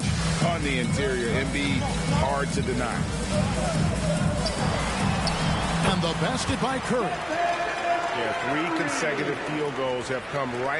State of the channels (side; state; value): both; identical; correlation 1.00